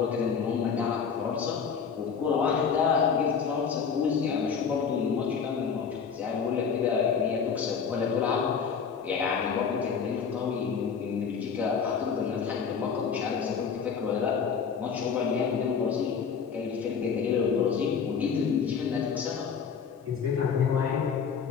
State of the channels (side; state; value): right; quieter; 6.4 dB